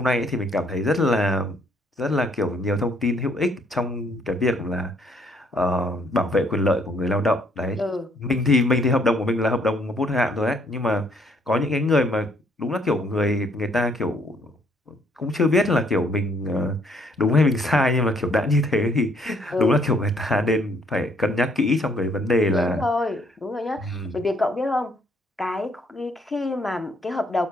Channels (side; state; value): both; normal; correlation 0.66